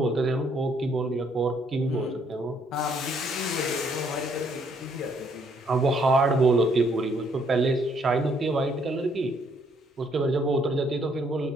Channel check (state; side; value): normal; both; correlation 0.68